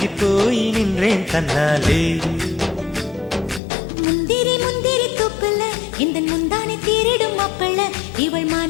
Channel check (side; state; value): right; drops out; at 3.6 s